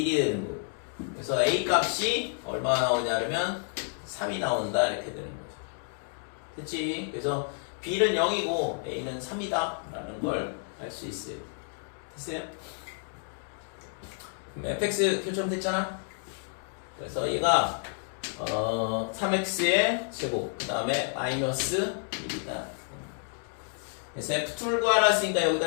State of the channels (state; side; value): silent; right; 58 dB below the other